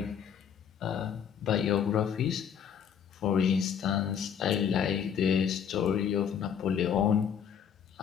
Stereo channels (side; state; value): right; quieter; 8.1 dB